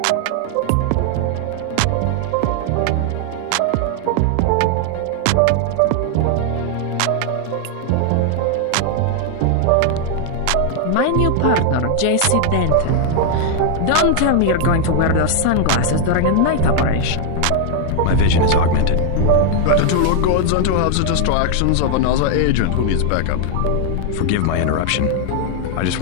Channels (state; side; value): different; both; correlation 0.00